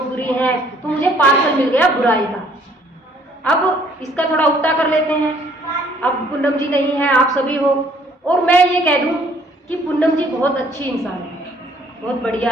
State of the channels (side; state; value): both; normal; correlation 0.61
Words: बुरी हैं, तो मुझे पार्सल मिल गया बुराई का। अब इसका थोड़ा उल्टा कर लेते हैं, अब पूनम जी नहीं है, आप सभी हो, और मैं ये कह दूं कि पूनम जी बहुत अच्छी इंसान है, बहुत